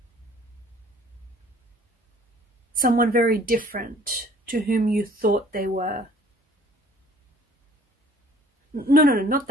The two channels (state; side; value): normal; both; correlation 0.54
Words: someone very different to whom you thought they were. No, not